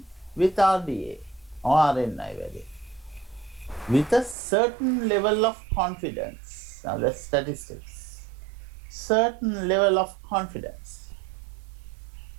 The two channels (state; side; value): drops out; left; at 4.4 s